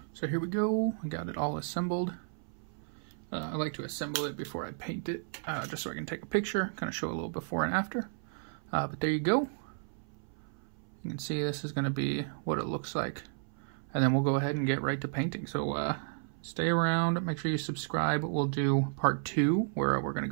So here we go, I got it all assembled. I like to assemble it before I paint it, just so I can take a picture, kind of show a little before and after. But there you go. You can see this is going to be what it looks like. And then we'll go ahead and get right to painting. So stay around, make sure you subscribe. We'll do part 2 where we're going to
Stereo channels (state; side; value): silent; left; 56 dB below the other